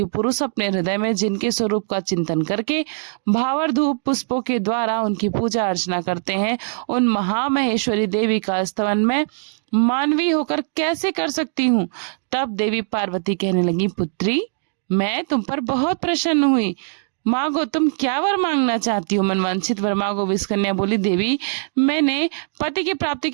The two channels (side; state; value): left; silent; digital silence